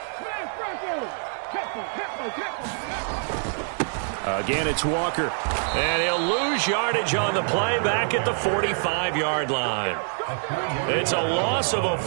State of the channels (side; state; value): left; silent; 61 dB below the other